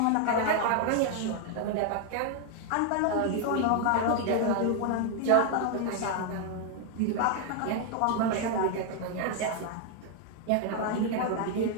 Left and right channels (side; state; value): both; different; correlation 0.00